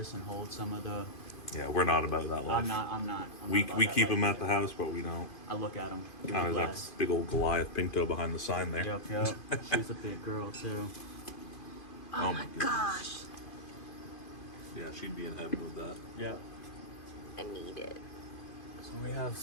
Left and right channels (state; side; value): late; right; 2.5 ms